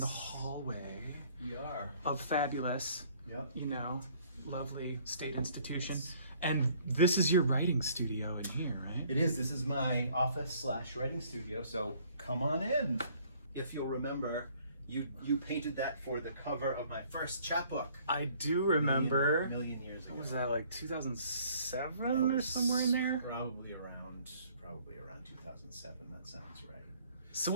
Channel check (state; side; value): inverted; both; correlation -0.59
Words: hallway. We are of fabulous, Yep. Lovely state institution. Yes. And this is your writing studio in here, right? It is. This is my office / writing studio. So come on in. If you'll remember, you painted that for the cover of my first chapbook. I do remember. A million years ago. What was that, like 2007 or somewhere in there? Probably around 2007. That sounds right. So